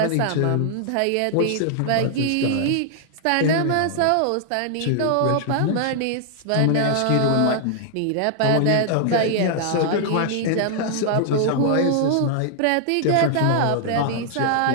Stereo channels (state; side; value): different; both; correlation -0.01